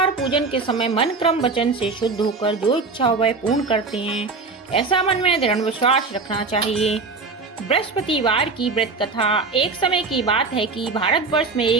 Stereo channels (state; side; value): quieter; left; 4.2 dB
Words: पूजन के समय मन क्रम वचन से शुद्ध होकर जो इच्छा हो वह पूर्ण करते हैं, ऐसा मन में दृढ़ विश्वास रखना चाहिए। बृहस्पतिवार की व्रत कथा। एक समय की बात है कि भारतवर्ष में